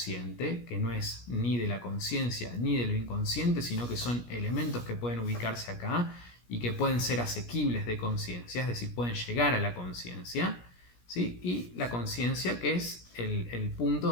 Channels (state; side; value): late; right; 17 ms